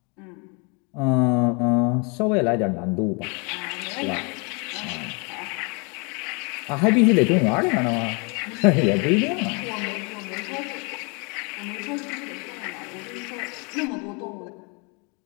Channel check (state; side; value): quieter; right; 32.6 dB